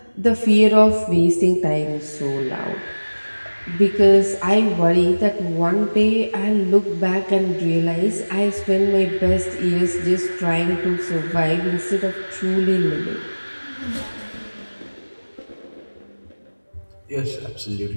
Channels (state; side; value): inverted; both; correlation -1.00